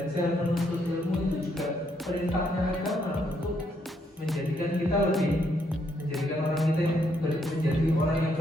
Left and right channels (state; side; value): normal; both; correlation 0.74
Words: menuntut ilmu itu juga perintahnya agama untuk menjadikan kita menjadikan orang kita yang menjadi orang yang